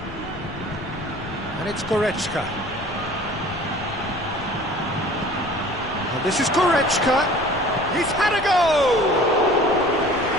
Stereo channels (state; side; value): noise; left; rumble, 13 dB below the sound